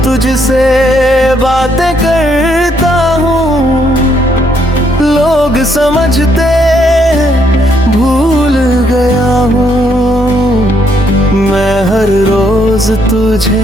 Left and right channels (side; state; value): both; normal; correlation 0.72